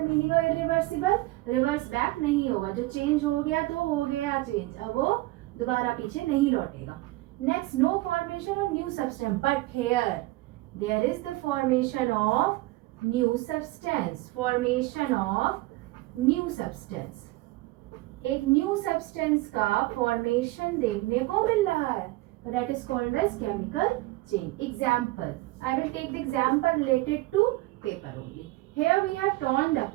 meaning of irreversible? Reverse back नहीं होगा, जो change हो गया तो हो गया चेंज, अब वो दोबारा पीछे नहीं लौटेगा. Next, no formation of new substance, but here there is the formation of new substance. Formation of new substance, एक न्यू सब्सटेंस का फॉर्मेशन देखने को मिल रहा है, that is called as chemical change. Example, I will take the example related to paper only. Here we have torn the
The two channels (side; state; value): left; quieter; 19.9 dB